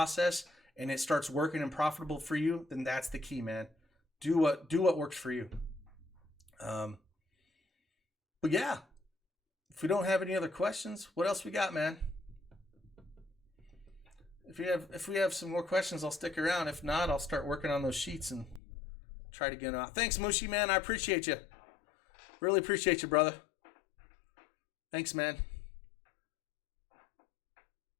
and it starts working and profitable for you, then that's the key, man. Do what works for you. But yeah, if we don't have any other questions, what else we got, man? If we have some more questions, I'll stick around. If not, I'll start working on those sheets and try to get them out. Thanks, Mushi, man. I appreciate you. Really appreciate you, brother. Thanks, man.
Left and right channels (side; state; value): right; drops out; at 18.6 s